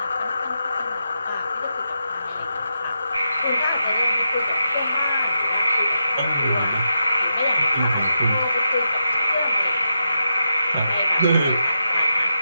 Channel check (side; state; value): both; inverted; correlation -0.86